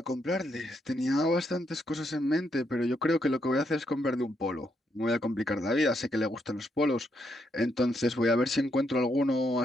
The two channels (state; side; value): normal; both; correlation 0.77